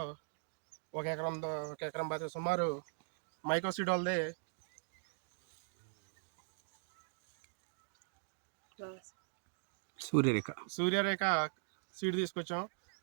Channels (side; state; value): left; silent; digital silence